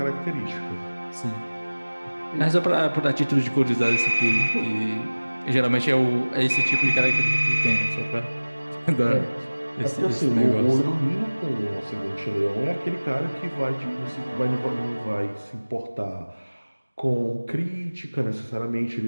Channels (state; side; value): inverted; both; correlation -1.00